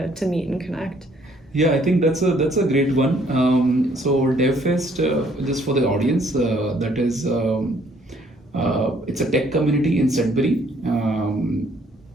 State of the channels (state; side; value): normal; both; correlation 0.64